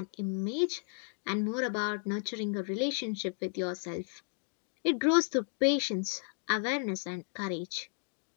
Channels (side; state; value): right; silent; 55 dB below the other